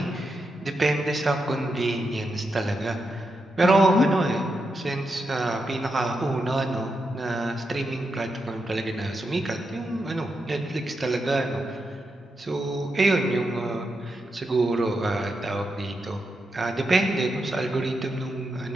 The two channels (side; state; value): both; normal; correlation 0.85